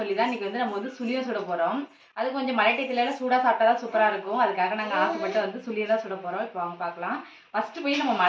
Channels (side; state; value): both; identical; correlation 1.00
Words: தான் இன்றைக்கி வந்து நம்ம வந்து சுழியம் சுட போகிறோம். அது கொஞ்சம் மழை டயத்துலலாம் சூடாக சாப்பிட்டா தான் சூப்பராக இருக்கும். அதுக்காக நாங்கள் ஆசைப்பட்டு வந்து சுழியம் தான் சுட போகிறோம். இப்போ அவங்க பார்க்கலாம். ஃபஸ்ட்டு போய் நம்ம